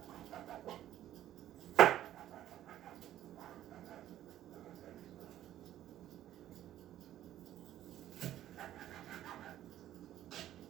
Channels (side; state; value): left; quieter; 12.6 dB